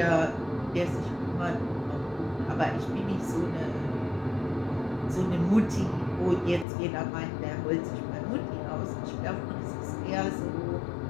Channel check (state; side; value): drops out; right; at 6.7 s